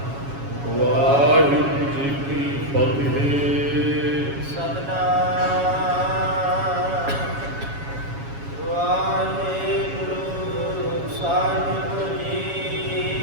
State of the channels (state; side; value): late; left; 7.2 ms